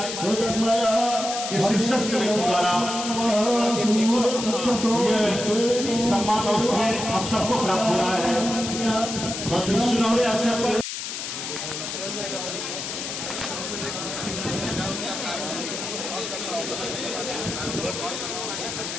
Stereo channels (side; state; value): left; noise; hiss, 5 dB below the sound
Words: इस शिक्षक के द्वारा ये सम्मान और स्नेह हम सबको प्राप्त हो रहा है। सुनहरे अवसर पर